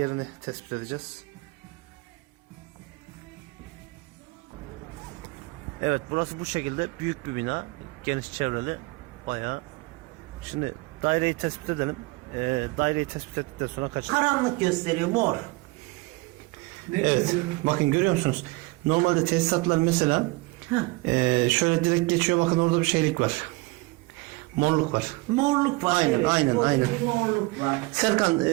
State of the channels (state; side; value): quieter; left; 23.8 dB